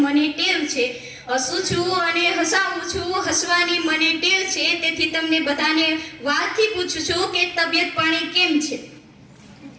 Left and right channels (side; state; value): both; identical; correlation 1.00